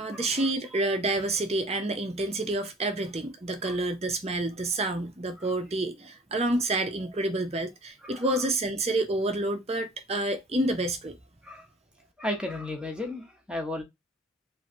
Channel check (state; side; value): normal; both; correlation 0.47